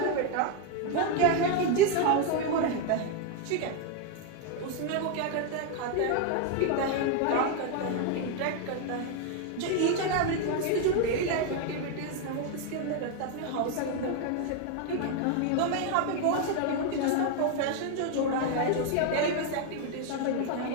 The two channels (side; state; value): both; different; correlation 0.01